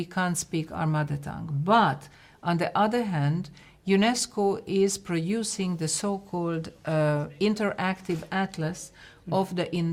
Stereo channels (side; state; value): both; identical; correlation 1.00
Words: can't speak our mother tongue. But on the other hand, UNESCO is producing the so-called interactive atlas of the